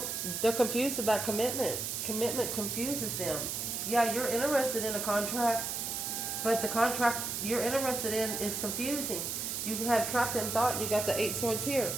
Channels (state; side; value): noise; right; hiss, 3 dB below the sound